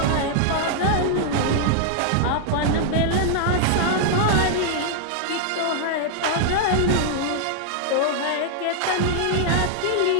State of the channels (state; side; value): different; both; correlation 0.00